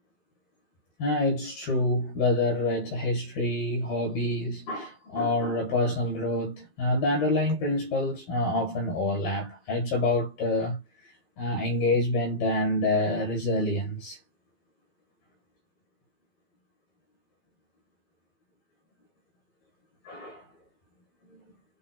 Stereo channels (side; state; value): right; late; 12 ms